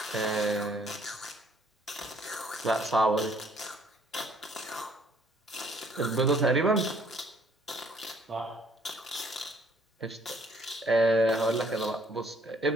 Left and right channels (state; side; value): normal; both; correlation 0.62